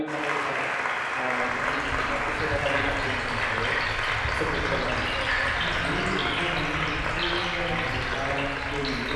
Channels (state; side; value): identical; both; correlation 1.00